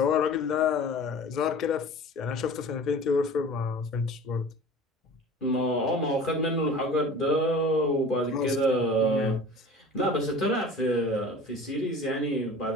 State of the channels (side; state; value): both; normal; correlation 0.40